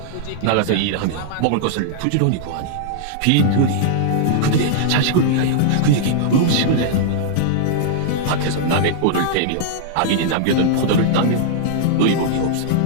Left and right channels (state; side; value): different; both; correlation -0.01